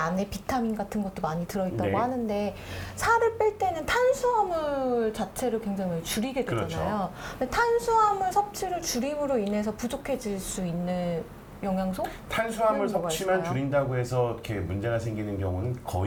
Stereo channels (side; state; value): both; identical; correlation 1.00